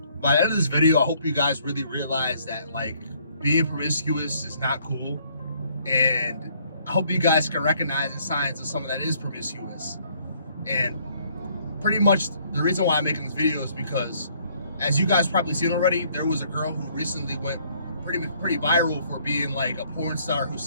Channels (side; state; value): both; inverted; correlation -0.64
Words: By the end of this video, I hope you guys really realize that like being promiscuous is not cool, and I hope you guys can recognize the signs of someone that is promiscuous. And pretty much the reason why I'm making this video is because, as you guys probably seen already, there was a girl who recently went pretty viral for being like a porn star who